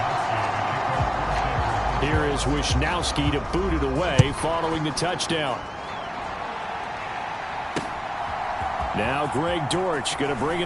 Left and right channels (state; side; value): identical; both; correlation 1.00